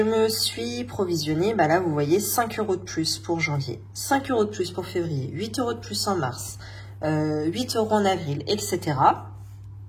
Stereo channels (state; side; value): identical; both; correlation 1.00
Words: me suis provisionné, là vous voyez, 5 € de plus pour janvier, 5 € de plus pour février, 8 € de plus en mars, 8 € en avril, etc.